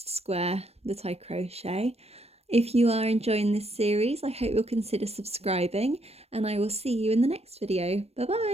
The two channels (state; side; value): late; left; 0.30 ms